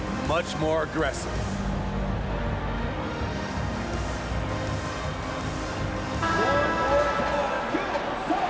much more aggressive.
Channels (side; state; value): both; identical; correlation 1.00